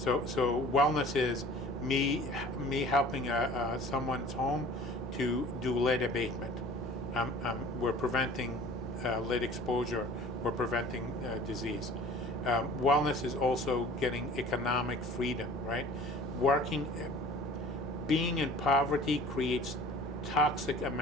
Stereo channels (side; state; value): both; normal; correlation 0.46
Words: wellness is me helping someone's home to do lead abatement. We're preventing lead exposure. We're preventing disease. Wellness is also getting economic freedom, right? Being in poverty creates toxic